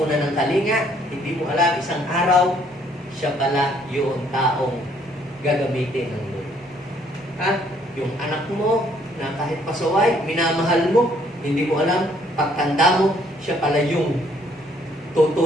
ng kalinga, hindi mo alam, isang araw, siya pala yung taong gagamitin ng Lord. Yung anak mo, na kahit pasaway, minamahal mo, hindi mo alam, pagtanda mo, siya pala yung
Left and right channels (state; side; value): normal; both; correlation 0.65